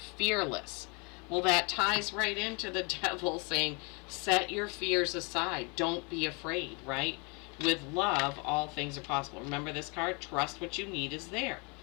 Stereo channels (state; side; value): quieter; right; 31.9 dB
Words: fearless. Well, that ties right into the devil saying, set your fears aside. Don't be afraid, right? With love, all things are possible. Remember this card? Trust what you need is there.